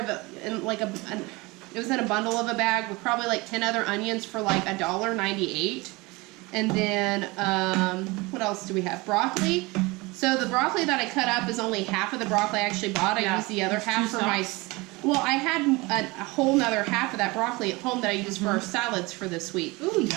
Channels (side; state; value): left; quieter; 23.9 dB